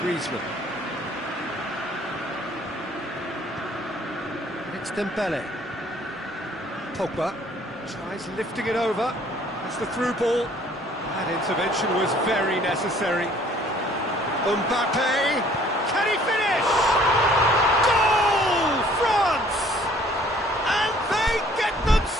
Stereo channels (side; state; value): both; normal; correlation 0.57